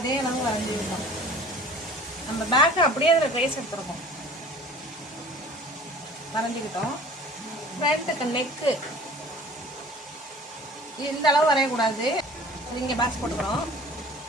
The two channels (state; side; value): normal; both; correlation 0.46